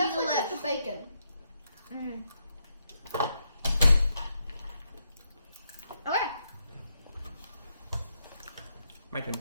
delish. the bacon. Mm. Okay. My turn.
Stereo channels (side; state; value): both; inverted; correlation -0.80